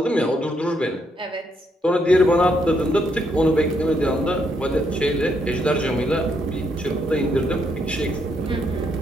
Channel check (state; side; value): normal; both; correlation 0.75